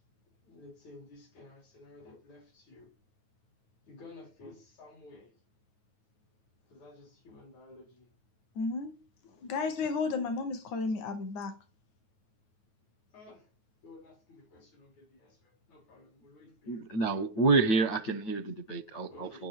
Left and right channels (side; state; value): right; late; 9.3 ms